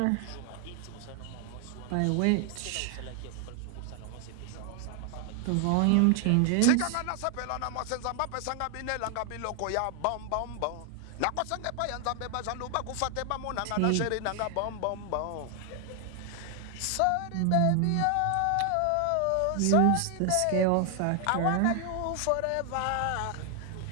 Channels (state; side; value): different; both; correlation 0.00